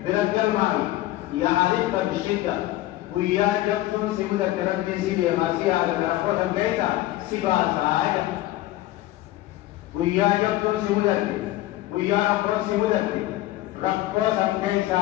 بركب معي يعرفك بالشدة ويا جبتون سيودك ربي سيبي غاسي على رخوة بيتا سيبا ساعدة ويا جبتون سيودك ويا رخوة سيودك رخوة سمكيسا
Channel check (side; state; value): right; quieter; 16.1 dB